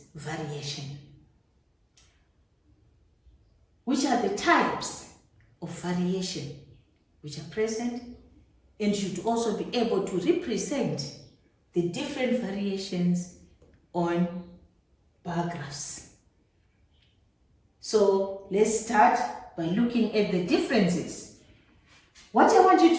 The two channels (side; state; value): both; identical; correlation 1.00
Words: variation? Which are the types of variation which are present, and should also be able to represent the different variations on bar graphs. So let's start by looking at the differences. What I want you